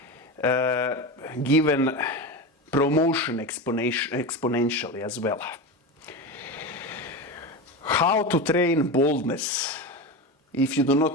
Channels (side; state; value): both; normal; correlation 0.22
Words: given promotion exponentially as well. How to train boldness? If you do